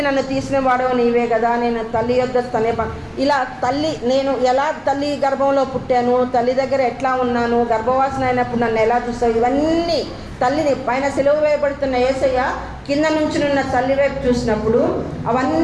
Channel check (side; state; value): both; identical; correlation 1.00